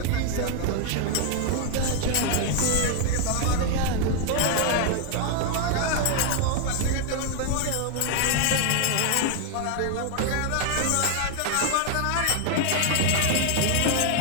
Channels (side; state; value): both; different; correlation 0.00